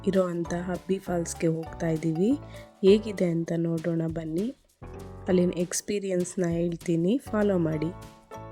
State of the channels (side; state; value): both; identical; correlation 1.00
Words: ಇರೋ ಅಂಥ ಅಬ್ಬಿ ಫಾಲ್ಸ್ಗೆ ಹೋಗ್ತಾ ಇದ್ದೀವಿ. ಹೇಗಿದೆ ಅಂತ ನೋಡೋಣ ಬನ್ನಿ. ಅಲ್ಲಿನ ಎಕ್ಸ್ಪೀರಿಯನ್ಸ್ನ ಹೇಳ್ತೀನಿ, ಫಾಲೋ ಮಾಡಿ.